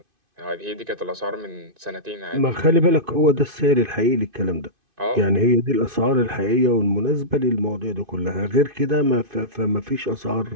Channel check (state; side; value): late; left; 2.5 ms